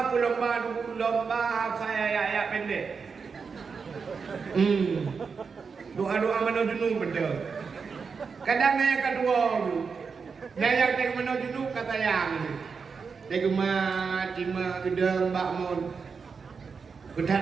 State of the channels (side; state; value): left; quieter; 5.4 dB